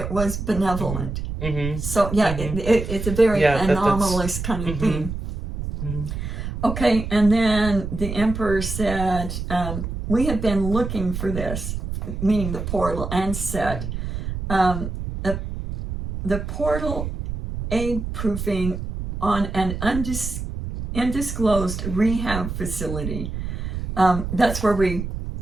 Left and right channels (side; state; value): right; noise; rumble, 5 dB below the sound